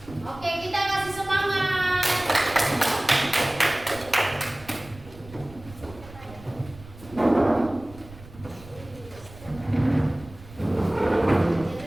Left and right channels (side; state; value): right; noise; rumble, 19 dB below the sound